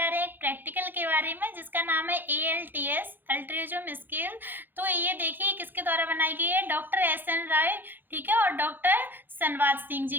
रहे हैं एक प्रैक्टिकल के बारे में जिसका नाम है ALTS अल्ट्रिज्म स्केल। तो ये देखिए किसके द्वारा बनाई गई है, डॉक्टर SN राय, ठीक है, और डॉक्टर सनवाज सिंह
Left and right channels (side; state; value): left; late; 0.093 ms